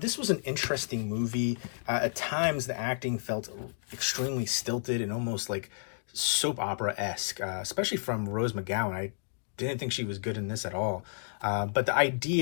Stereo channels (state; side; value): silent; right; digital silence